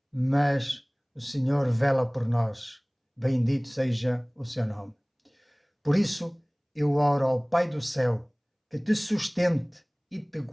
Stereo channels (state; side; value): identical; both; correlation 1.00